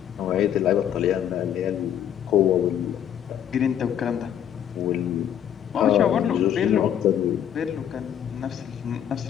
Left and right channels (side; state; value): right; quieter; 9.7 dB